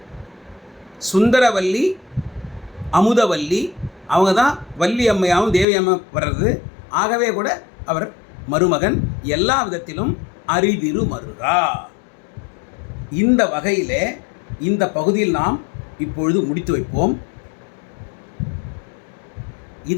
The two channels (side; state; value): right; drops out; at 5.7 s